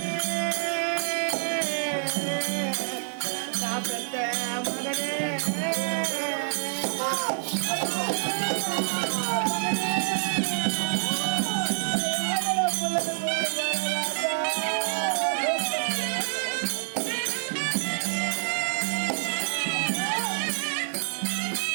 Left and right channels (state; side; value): silent; left; 60 dB below the other